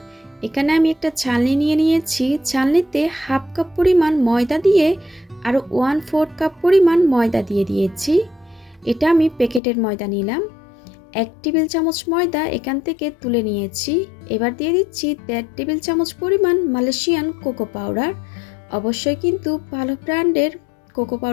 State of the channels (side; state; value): right; drops out; at 9.6 s